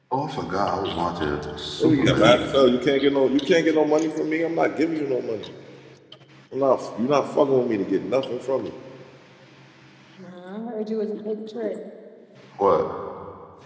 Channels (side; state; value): both; identical; correlation 1.00